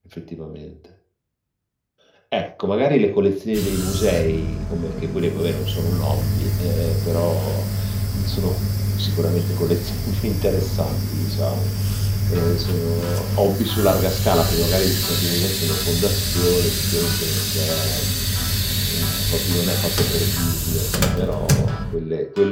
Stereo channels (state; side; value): identical; both; correlation 1.00